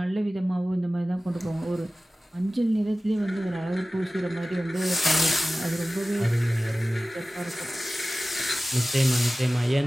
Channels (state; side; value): normal; both; correlation 0.97